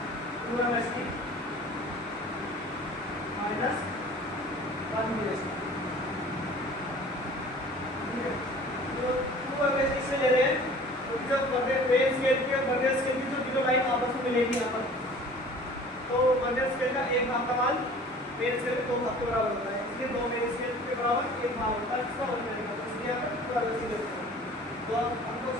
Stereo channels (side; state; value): both; normal; correlation 0.46